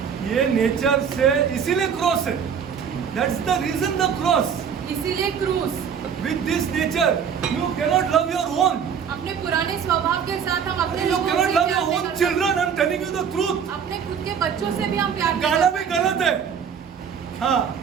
ये नेचर से इसीलिए क्रॉस है. That's the reason the cross. इसीलिए क्रूस। With this nature you cannot love your own. अपने पुराने स्वभाव के साथ हम अपने You लोगों cannot से love प्यार your नहीं own कर children. I'm telling you the truth. सकते। अपने खुद के बच्चों से भी हम प्यार नहीं गाना कर भी सकते। गलत है. हाँ,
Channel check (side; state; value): left; quieter; 7.3 dB